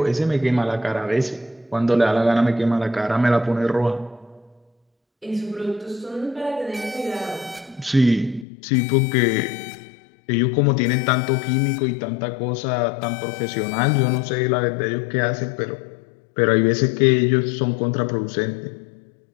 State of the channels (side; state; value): right; drops out; at 8.5 s